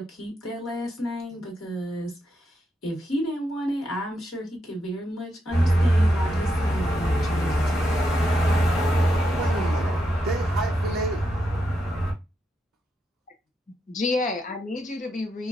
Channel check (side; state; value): both; normal; correlation 0.83